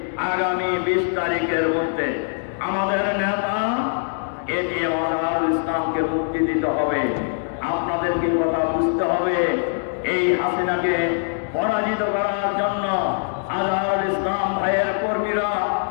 আগামী 20 তারিখের মধ্যে আমাদের নেতা এটিএম আজহারুল ইসলামকে মুক্তি দিতে হবে। আপনাদেরকে কথা বুঝতে হবে, এই হাসিনাকে পরাজিত করার জন্য আজহারুল ইসলাম ভাইয়ের কর্মীরা,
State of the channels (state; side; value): silent; right; digital silence